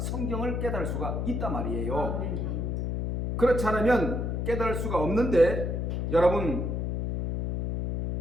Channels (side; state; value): left; noise; hum, 1 dB below the sound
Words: 깨달을 수가 있단 말이에요. 그렇지 않으면 깨달을 수가 없는데, 여러분,